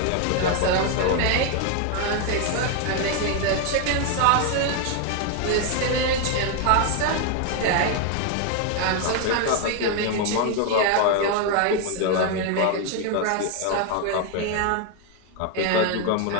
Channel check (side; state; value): both; different; correlation 0.01